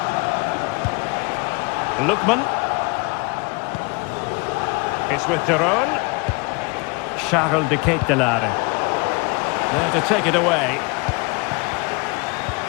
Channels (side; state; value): right; quieter; 28.6 dB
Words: Lookman. It's with de Roon. Charles de Ketelaere. There to take it away.